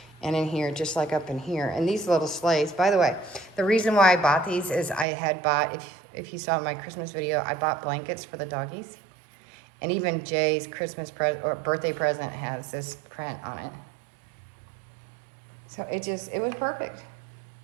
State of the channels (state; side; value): drops out; left; at 5.1 s